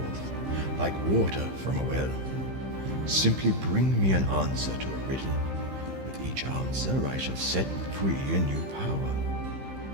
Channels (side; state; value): left; late; 15 ms